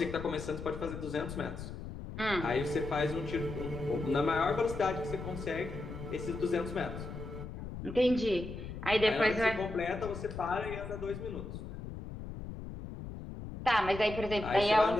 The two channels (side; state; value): left; noise; rumble, 9 dB below the sound